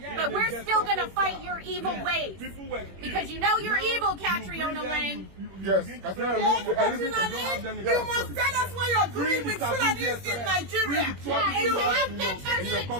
but we're still going to fight your evil ways. Because you know you're evil, Catriona Lang. Yes, you must tell us what you're doing with Fulanis in Nigeria. You have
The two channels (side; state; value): left; late; 21 ms